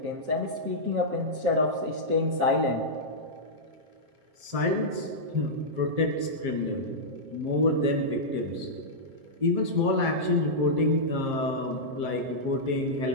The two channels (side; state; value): left; late; 7.5 ms